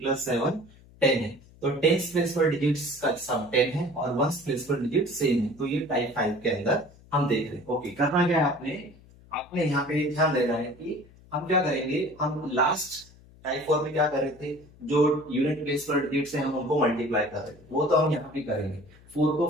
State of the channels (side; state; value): left; noise; hum, 24 dB below the sound